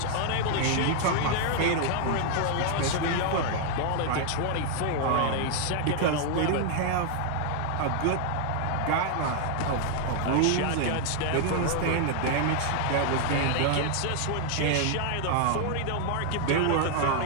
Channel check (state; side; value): different; both; correlation 0.00